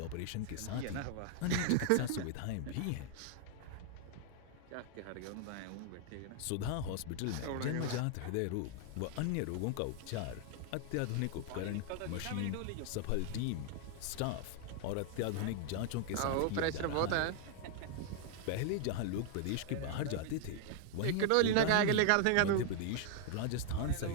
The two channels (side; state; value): both; different; correlation 0.00